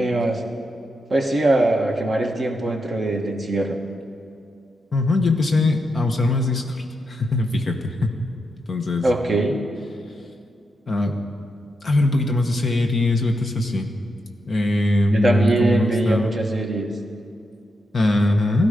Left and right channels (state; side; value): normal; both; correlation 0.84